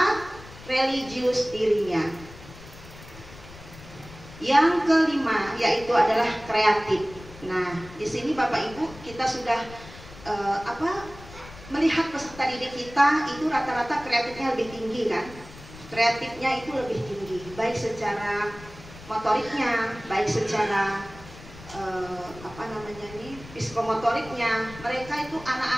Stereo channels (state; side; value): noise; left; rumble, 17 dB below the sound